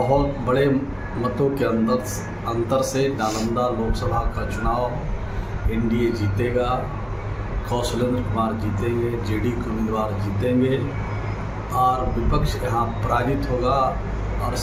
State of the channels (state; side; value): identical; both; correlation 1.00